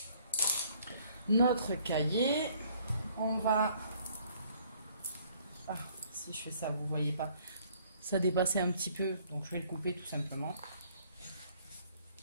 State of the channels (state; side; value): inverted; both; correlation -0.61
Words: cahier. On va... Ah, si je fais ça, vous voyez pas. Ça dépassait un petit peu, donc je vais le couper tout simplement.